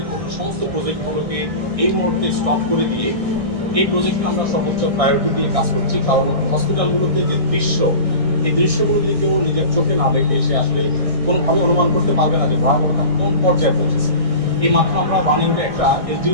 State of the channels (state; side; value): late; left; 1.6 ms